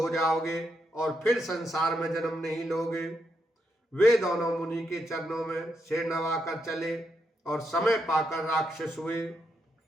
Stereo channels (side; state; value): both; normal; correlation 0.81